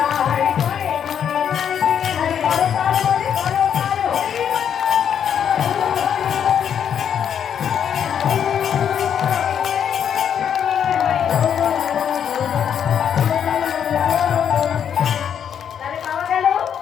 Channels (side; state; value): right; quieter; 8.4 dB